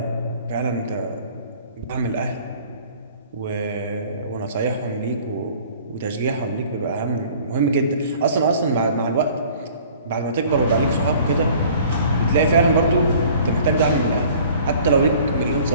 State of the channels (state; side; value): inverted; both; correlation -0.51